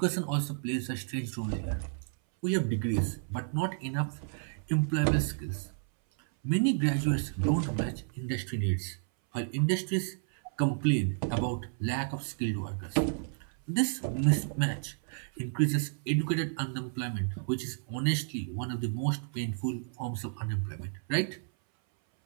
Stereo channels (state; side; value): silent; left; 57 dB below the other